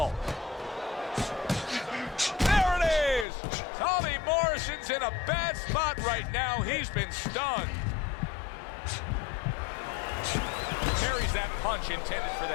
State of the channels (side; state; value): right; drops out; at 3.2 s